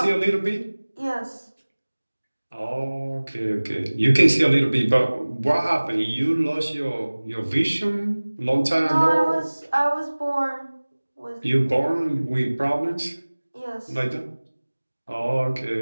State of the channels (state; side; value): inverted; both; correlation -1.00